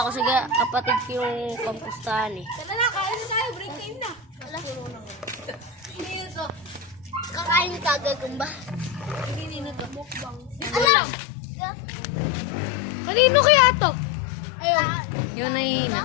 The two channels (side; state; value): right; drops out; at 10.9 s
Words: ko sa kapatid ko yung pampustahan eh. Tara na, kain na tayo. Break time na. Kakain ni Kagagamba. Alam! Kanino kaya to? Ayun. Yun na yun.